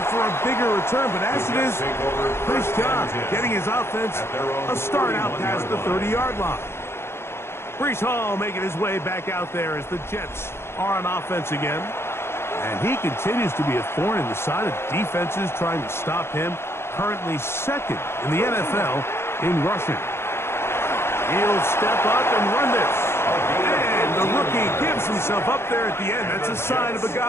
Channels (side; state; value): right; late; 0.12 ms